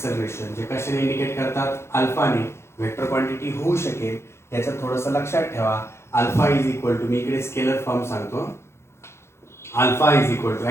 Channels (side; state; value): right; late; 0.13 ms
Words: जे कशाने इंडिकेट करतात अल्फाने. वेक्टर क्वांटिटी होऊ शकेल याचं थोडंसं लक्षात ठेवा. अल्फा इज इक्वल टू मी इकडे स्केलर फॉर्म सांगतो. Alpha is equal to